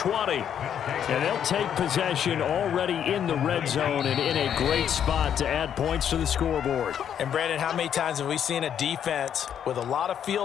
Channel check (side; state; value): right; quieter; 9.0 dB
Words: And they'll take possession already in the red zone and in a great spot to add points to the scoreboard. And, Brandon, how many times have we seen a defense with a lot of